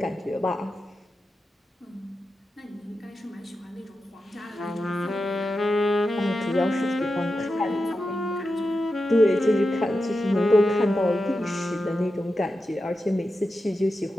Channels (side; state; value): both; normal; correlation 0.90